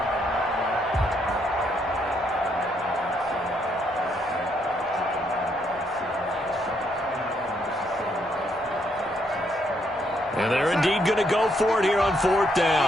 And they're indeed going to go for it here on 4th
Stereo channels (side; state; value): both; normal; correlation 0.74